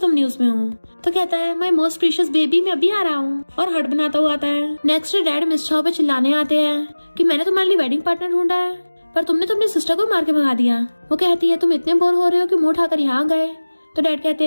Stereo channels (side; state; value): both; inverted; correlation -1.00